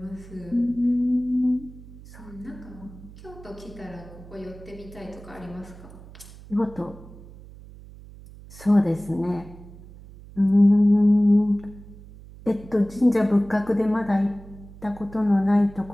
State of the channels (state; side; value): noise; right; hum, 18 dB below the sound